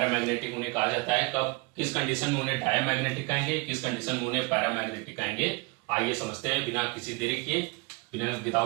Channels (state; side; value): quieter; left; 27.7 dB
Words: उन्हें कहा जाता है, कब किस कंडीशन में उन्हें डायमैग्नेटिक कहेंगे, किस कंडीशन में उन्हें पैरामैग्नेटिक कहेंगे। आइए समझते हैं बिना किसी देरी किए, बिना